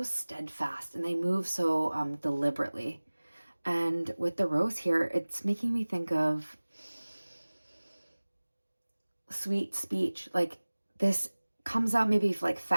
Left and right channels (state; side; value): inverted; both; correlation -1.00